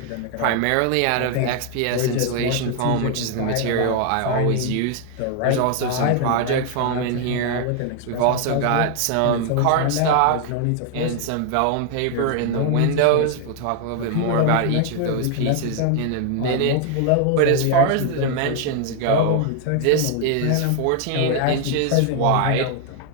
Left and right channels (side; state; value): both; different; correlation 0.00